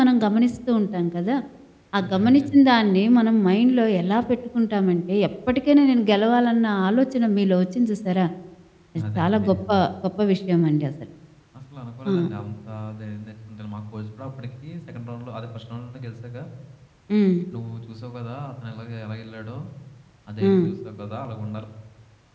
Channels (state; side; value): identical; both; correlation 1.00